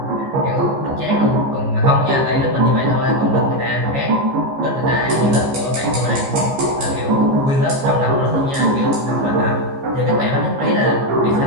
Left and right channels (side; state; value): left; late; 15 ms